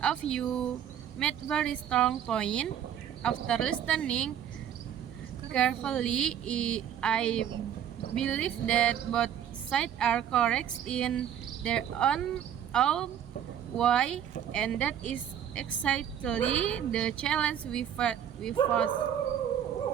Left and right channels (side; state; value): left; quieter; 9.7 dB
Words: of you made very strong point. After listening carefully, I believe that both sides are correct in their own way, and that is exactly the challenge we face.